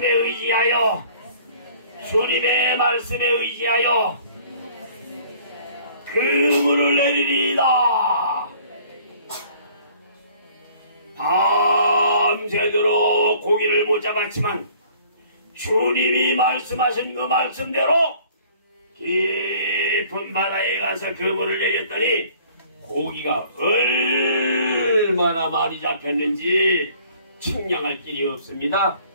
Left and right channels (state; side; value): inverted; both; correlation -0.55